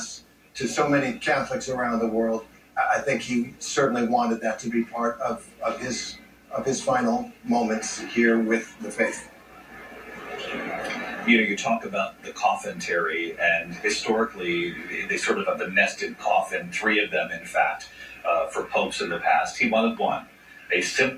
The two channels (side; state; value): both; identical; correlation 1.00